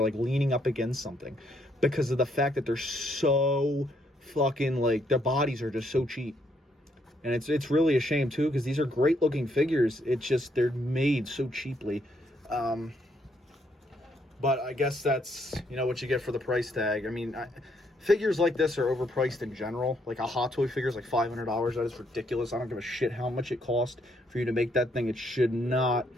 like, leaning up against something because of the fact that they're so fucking, like, their bodies are just so cheap. And it's really a shame, too, because these are great-looking figures. It's just they're made so cheaply. But I guess that's, you know, what you get for the price tag. I mean, figures like this are overpriced in general. Like, a Hot Toy figure is like $500. That is ridiculous. I don't give a shit how much it cost for you to make that thing. It should not,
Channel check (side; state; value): both; normal; correlation 0.72